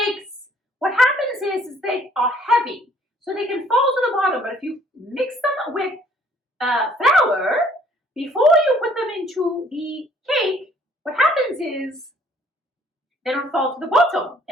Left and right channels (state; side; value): normal; both; correlation 0.59